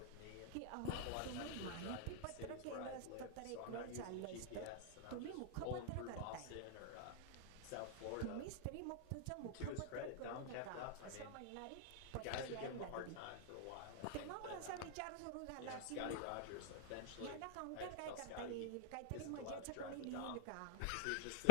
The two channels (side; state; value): both; different; correlation 0.00